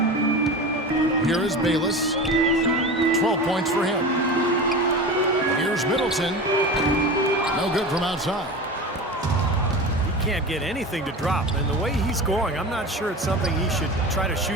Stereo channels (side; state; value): both; normal; correlation 0.30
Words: Here is Bayless. 12 points for him. Here's Middleton. No good from outside. He can't get anything to drop. And the way he's going, I'm not sure it's something he should try to